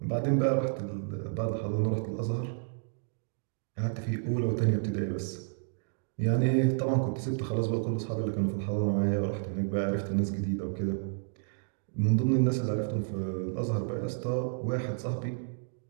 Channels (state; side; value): silent; left; digital silence